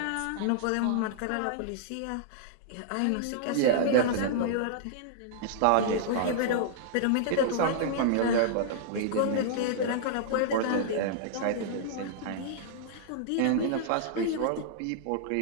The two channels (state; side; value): different; both; correlation -0.02